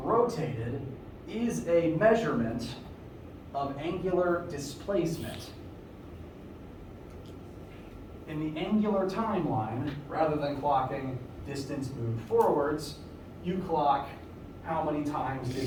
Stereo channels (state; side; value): identical; both; correlation 1.00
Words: is a measurement of angular displacement. In the angular timeline, rather than clocking distance moved forwards, you clock how many times